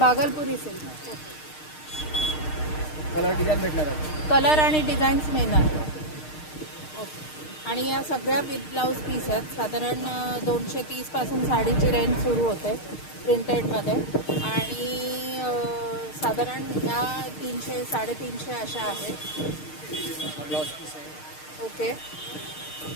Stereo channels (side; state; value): right; late; 6.5 ms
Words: सिल्क. कलर डिझाईन भेटणार आहे. कलर आणि डिझाईन्स मिळणार. ओके, आणि या सगळ्या विथ ब्लाउज पीस आहेत. साधारण 230 पासून साडीची रेंज सुरू होते प्रिंटेडमध्ये आणि साधारण या 300 350 अशा आहेत. ब्लाउज पीस आहे. ओके,